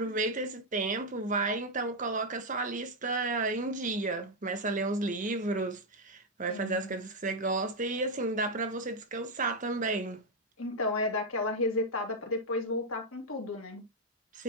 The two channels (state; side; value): normal; both; correlation 0.00